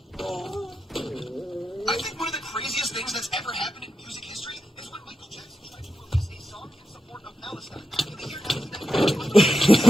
think one of the craziest things that's ever happened in music history is when Michael Jackson tried to release a song in support of Palestine in the year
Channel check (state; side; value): normal; both; correlation 0.88